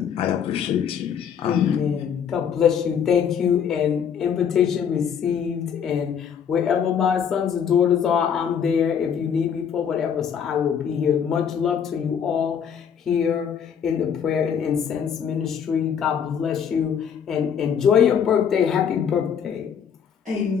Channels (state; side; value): quieter; right; 7.7 dB